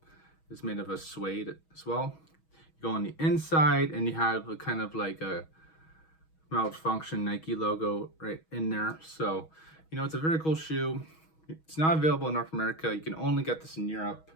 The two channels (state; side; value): late; right; 6.3 ms